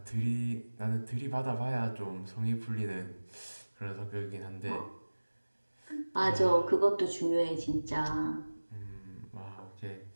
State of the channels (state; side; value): inverted; both; correlation -1.00